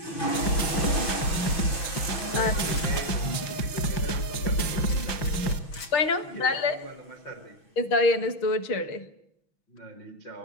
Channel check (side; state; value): right; late; 6.1 ms